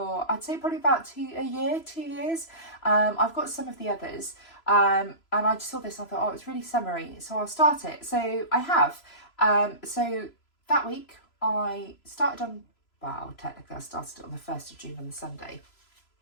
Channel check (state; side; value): late; right; 3.0 ms